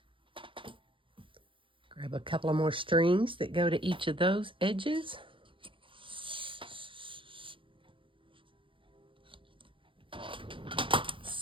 Grab a couple of more strings that go to each of those edges. Let's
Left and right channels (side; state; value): left; late; 0.25 ms